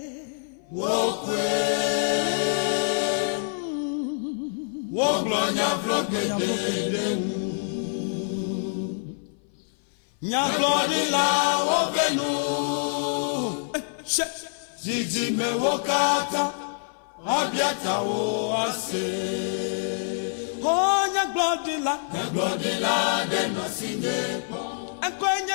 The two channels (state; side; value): silent; right; 57 dB below the other